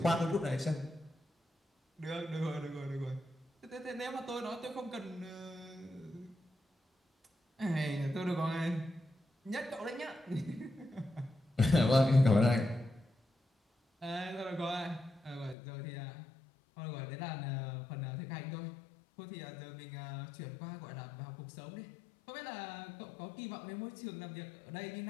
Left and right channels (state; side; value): drops out; right; at 15.6 s